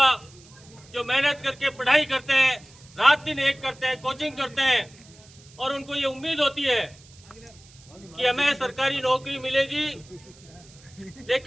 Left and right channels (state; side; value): noise; right; hiss, 24 dB below the sound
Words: जो मेहनत करके पढ़ाई करते हैं, रात दिन एक करते हैं, कोचिंग करते हैं और उनको ये उम्मीद होती है कि हमें सरकारी नौकरी मिलेगी,